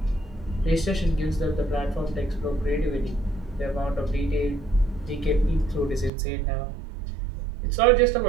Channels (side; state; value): left; drops out; at 6.1 s